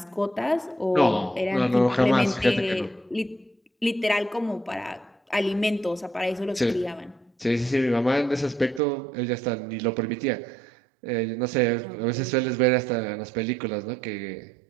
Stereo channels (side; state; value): left; drops out; at 8.8 s